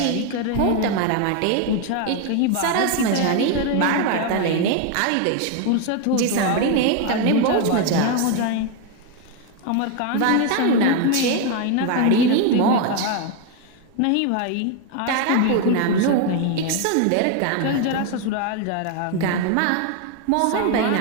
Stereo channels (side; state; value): both; different; correlation 0.01